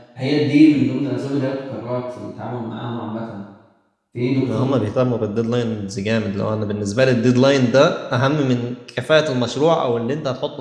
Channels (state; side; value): identical; both; correlation 1.00